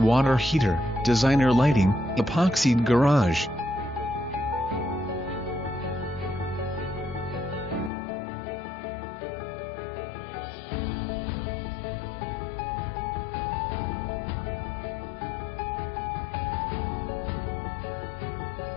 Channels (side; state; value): right; drops out; at 7.9 s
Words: heater, designer lighting, epoxied garage,